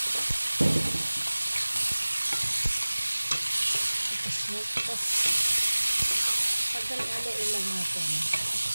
Tapos pagdalalain lang natin.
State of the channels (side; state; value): both; inverted; correlation -1.00